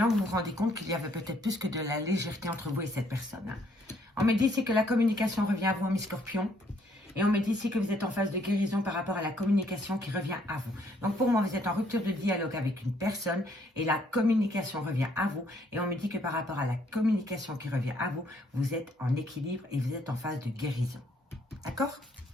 vous vous rendez compte qu'il y avait peut-être plus que de la légèreté entre vous et cette personne. Hein. On me dit ici que la communication revient à vous, amis Scorpion. Et on me dit ici que vous êtes en phase de guérison par rapport à la communication qui revient à vous. Donc pour moi, vous êtes en rupture de dialogue avec une personne et la communication revient à vous. Et on me dit que par rapport à la communication qui revient à vous, vous êtes en équilibre et vous êtes en phase de guérison. D'accord?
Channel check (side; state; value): both; normal; correlation 0.67